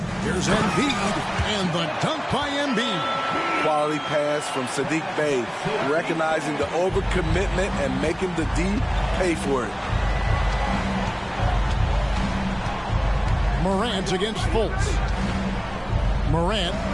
Here's Embiid. And the dunk by Embiid. Quality pass from Sadiq Bey. Recognizing the overcommitment and making the D pay for it. Morant against Fultz. Morant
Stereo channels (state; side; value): identical; both; correlation 1.00